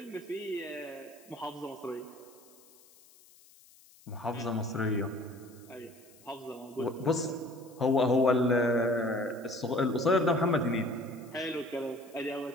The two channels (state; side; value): noise; left; hiss, 26 dB below the sound